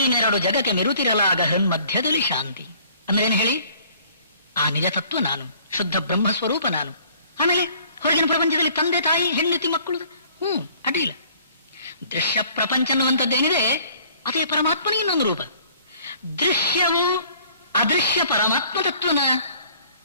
ಜಗಕ್ಕೆ ಮೆರುತಿರಲಾಗ ಹೃನ್ಮಧ್ಯದಲ್ಲಿ ಶಾಂತಿ. ಅಂದ್ರೆ ಏನು ಹೇಳಿ? ಆ ನಿಜ ತತ್ವ ನಾನು, ಶುದ್ಧ ಬ್ರಹ್ಮ ಸ್ವರೂಪ ನಾನು. ಆಮೇಲೆ ಹೊರಗಿನ ಪ್ರಪಂಚದಲ್ಲಿ ತಂದೆ ತಾಯಿ ಹೆಂಡತಿ ಮಕ್ಕಳು, ಅಡ್ಡಿಲ್ಲ. ದೃಶ್ಯ ಪ್ರಪಂಚ ಅನ್ನುವಂಥದ್ದೇನಿದೆ ಅದೇ ಪರಮಾತ್ಮನ ಇನ್ನೊಂದು ರೂಪ. ದೃಶ್ಯವು ಅದೃಶ್ಯ ಪರಮಾತ್ಮ ತತ್ವನ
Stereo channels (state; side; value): inverted; both; correlation -0.56